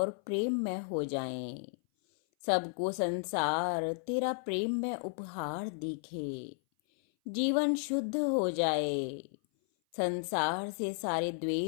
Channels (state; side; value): silent; right; 56 dB below the other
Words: प्रेम में हो जाएं। सबको संसार तेरा प्रेम में उपहार दिखे, जीवन शुद्ध हो जाए, संसार से सारे